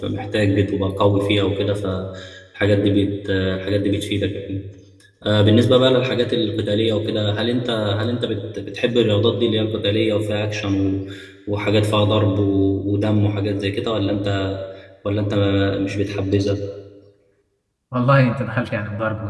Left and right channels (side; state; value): both; identical; correlation 1.00